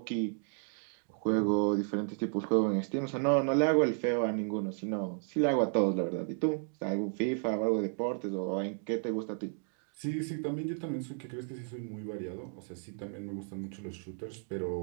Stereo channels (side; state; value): left; silent; 56 dB below the other